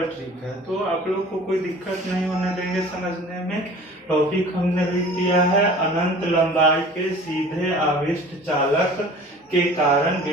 ट्रिक है। तो आप लोग को कोई दिक्कत नहीं होने देंगे समझने में। टॉपिक हमने लिख दिया है अनंत लंबाई के सीधे आवेष्ट चालक के कारण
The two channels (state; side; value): normal; both; correlation 0.44